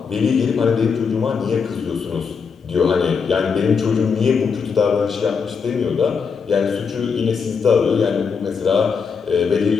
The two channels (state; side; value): quieter; right; 5.8 dB